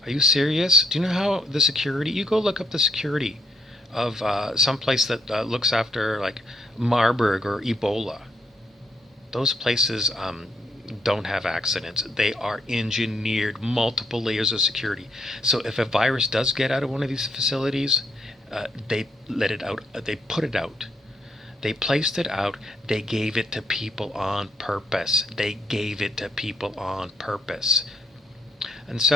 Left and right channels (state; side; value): normal; both; correlation 0.73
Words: Are you serious? Do you know how the security, you go look up the security of some place that looks after like Marburg or Ebola. Those places don't have accidents. They are engineered, multiple layers of security. So if a virus does get out of one of these facilities, they let it out. They put it out. They placed it out. They gave it to people on purpose. They gave it to people on purpose. And